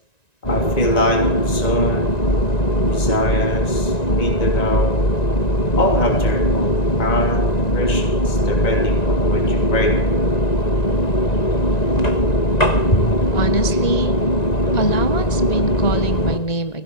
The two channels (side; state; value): right; late; 1.9 ms